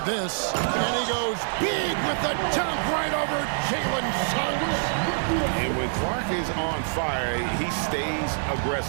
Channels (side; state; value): left; silent; digital silence